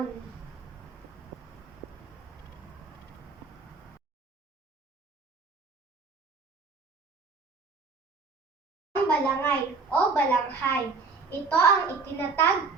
Ang balangay o balanghay. Ito ang itinatag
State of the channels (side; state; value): left; quieter; 4.3 dB